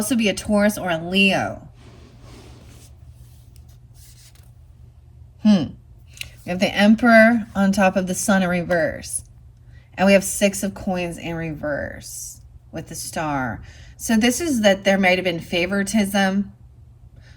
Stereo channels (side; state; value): both; identical; correlation 1.00